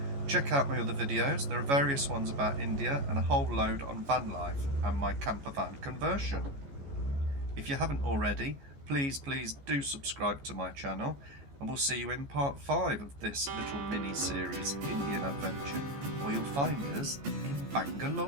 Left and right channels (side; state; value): left; late; 14 ms